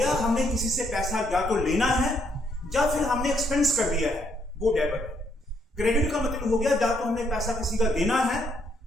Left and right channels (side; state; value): both; normal; correlation 0.72